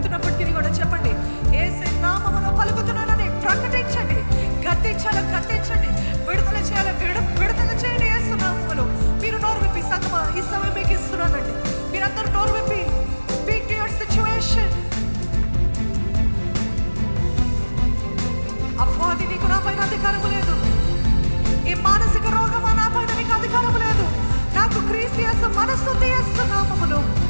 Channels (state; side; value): inverted; both; correlation -1.00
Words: కూడా చెప్పండి, యేసయ్య నామములో పలుకుతున్నానని ప్రకటించండి. గద్దించండి, విడుదల చేయాలి, విడుదల చేయండి యేసు నామములో. మీరు నోరు విప్పి సంగమా ఈ సమయం మీకు ఇస్తున్నానండి. మీరందరూ నోరు విప్పి స్పీక్ టు యువర్ సిచ్యువేషన్. అపవాది నీకు నా పైన అధికారం లేదు. ఈ మానసిక రోగమా నా పైన నీకు అధికారం లేదు. నాకు క్రీస్తు యేసు మనస్సు యేసు నామములో.